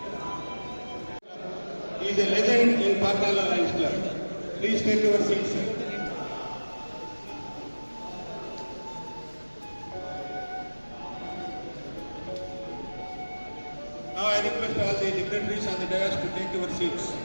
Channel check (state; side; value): inverted; both; correlation -1.00